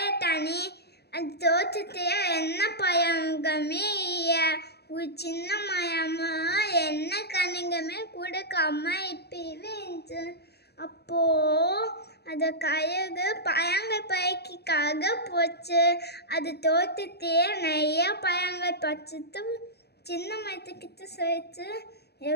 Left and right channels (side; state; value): right; late; 0.48 ms